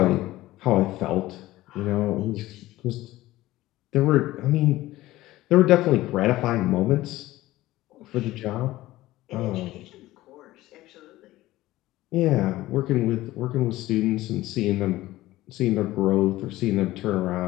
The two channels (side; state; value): right; quieter; 16.8 dB